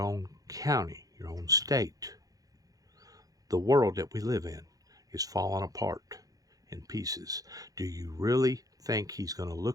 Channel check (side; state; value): left; late; 0.17 ms